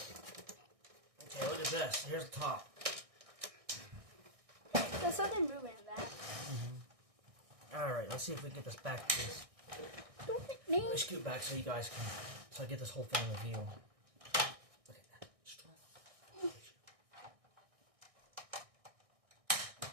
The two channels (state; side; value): late; left; 1.6 ms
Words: Okay, look at this. Here's the top. There's something moving in that. Alright, let's see if we can get this back, please. Don't hit me. Let me scoot back so you guys can... So I get this whole thing in the view. Look at that. Strong.